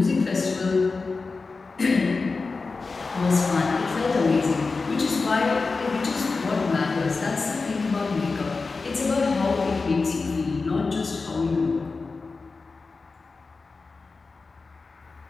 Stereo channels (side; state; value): right; quieter; 4.1 dB